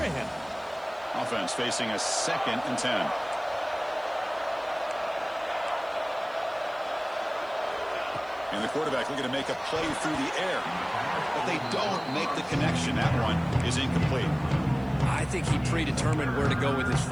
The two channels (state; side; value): noise; right; hiss, 30 dB below the sound